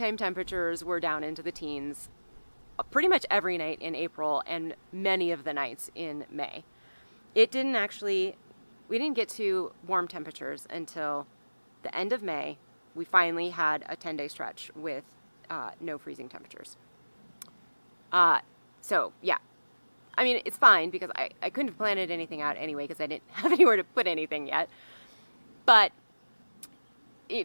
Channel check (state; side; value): inverted; both; correlation -1.00